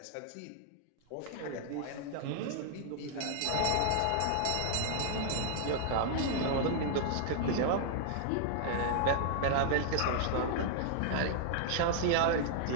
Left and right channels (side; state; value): both; different; correlation 0.00